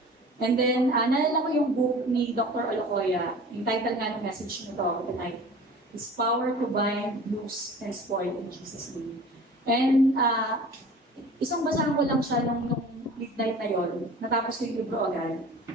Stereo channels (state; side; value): normal; both; correlation 0.42